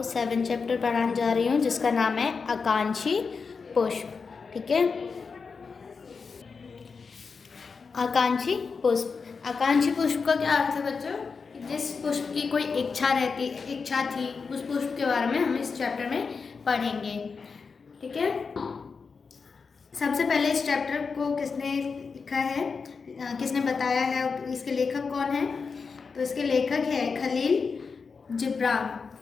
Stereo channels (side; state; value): right; quieter; 5.1 dB